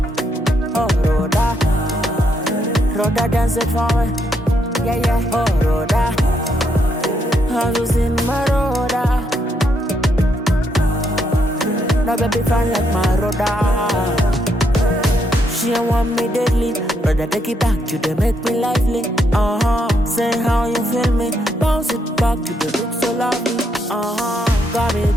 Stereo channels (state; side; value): normal; both; correlation 0.76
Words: dance it for me. Yeah, yeah. Oh, Rhoda, I'm just in my Rhoda. No baby fine like my Rhoda. She don't want me deadly, brother take it back, you dey make me lively. Say how you feel me, bounce it back, you dey look so lovely. Got me